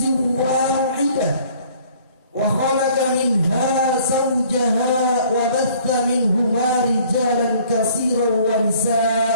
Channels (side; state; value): both; inverted; correlation -0.56